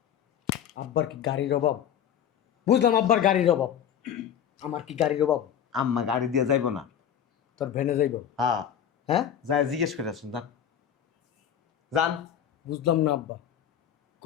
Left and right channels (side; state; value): right; quieter; 9.3 dB